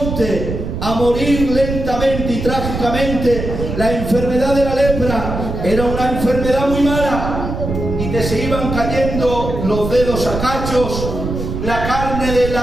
a morir lentamente y trágicamente. La enfermedad de la lepra era una enfermedad muy mala y te se iban cayendo los dedos a cachos, la carne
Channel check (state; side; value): noise; right; rumble, 5 dB below the sound